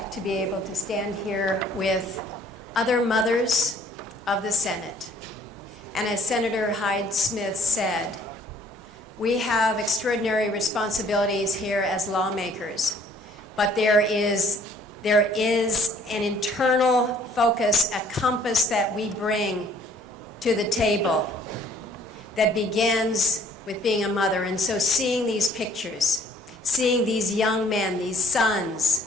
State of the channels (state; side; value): normal; both; correlation 0.58